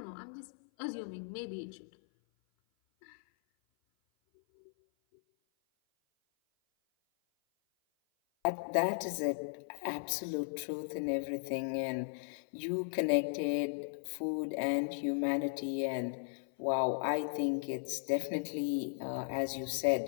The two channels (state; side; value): silent; right; 54 dB below the other